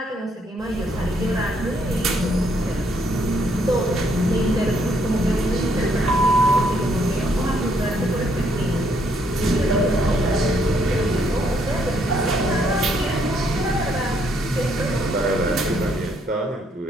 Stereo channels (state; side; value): normal; both; correlation 0.71